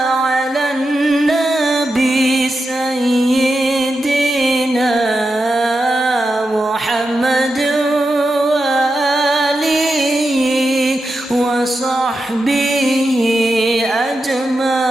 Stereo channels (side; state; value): both; normal; correlation 0.88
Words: nabi sayyidina Muhammad wa alihi wa sahbihi